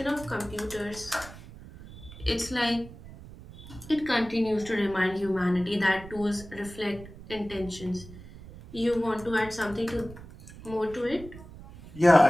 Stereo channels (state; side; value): noise; right; rumble, 16 dB below the sound